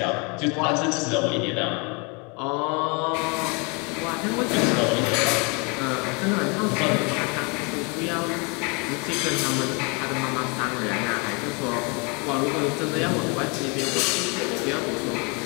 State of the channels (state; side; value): quieter; right; 31.8 dB